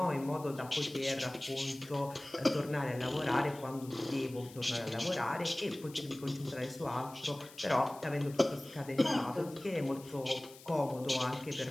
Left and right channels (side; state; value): left; noise; hiss, 20 dB below the sound